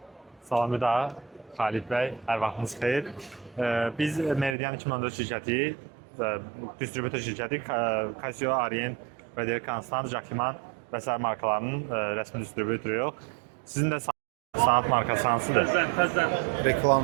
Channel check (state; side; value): drops out; left; at 4.5 s